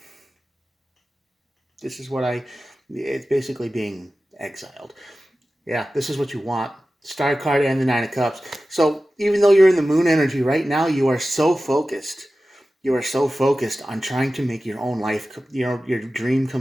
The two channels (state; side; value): normal; both; correlation 0.95